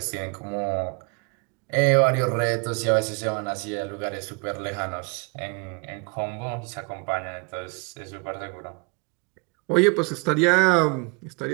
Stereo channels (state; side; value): quieter; left; 31.7 dB